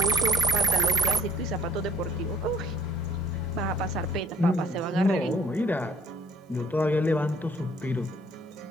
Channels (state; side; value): normal; both; correlation 0.58